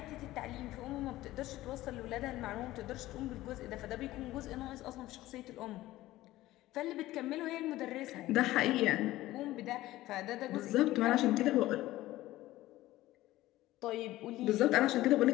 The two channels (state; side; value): quieter; right; 16.3 dB